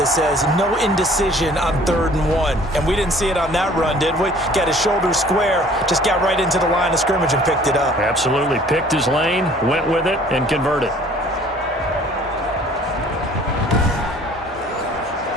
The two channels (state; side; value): normal; both; correlation 0.53